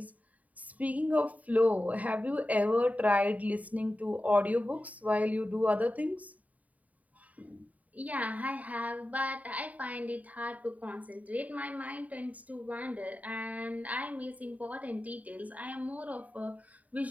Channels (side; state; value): left; late; 0.072 ms